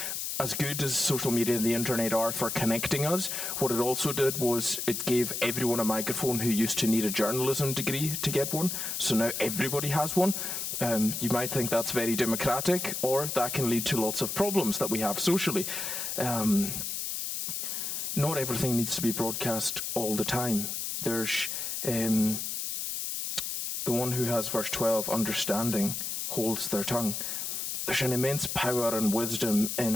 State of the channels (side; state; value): left; noise; hiss, 3 dB below the sound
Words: as good as social media and the internet are for connecting us, what it also did was it gave everyone a microphone who used to need a journalism degree to get one. So now everybody has one. You might think that's very democratic, or that can lead to lots of problems that we have socially. Not everything needs to be broadcast all the time. There's the one who has verse 12, understanding, holds their tongue. There's an immense power and wisdom